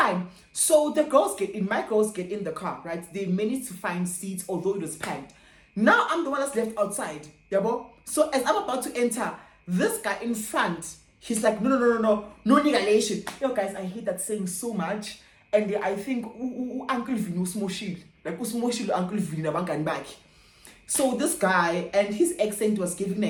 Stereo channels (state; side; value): identical; both; correlation 1.00